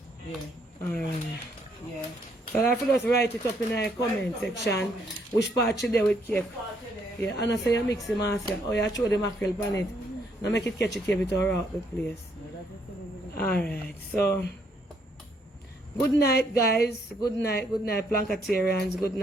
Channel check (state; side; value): normal; both; correlation 0.71